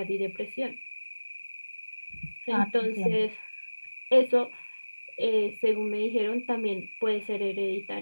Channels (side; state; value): both; inverted; correlation -1.00